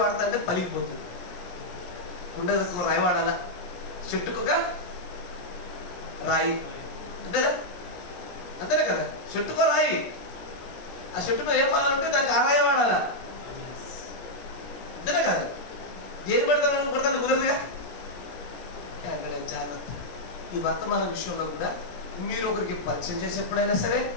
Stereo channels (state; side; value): late; right; 17 ms